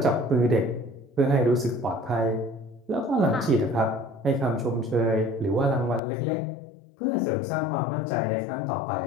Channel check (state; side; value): drops out; right; at 6.0 s